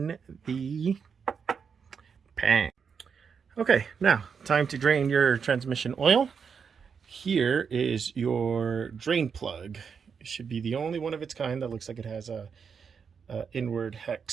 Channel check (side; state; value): left; quieter; 6.3 dB